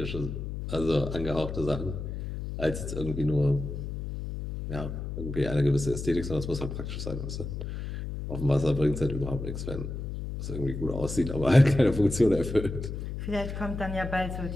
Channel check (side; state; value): left; noise; hum, 6 dB below the sound